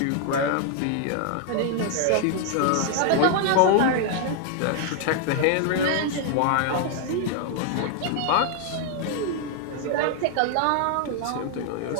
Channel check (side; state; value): both; different; correlation 0.00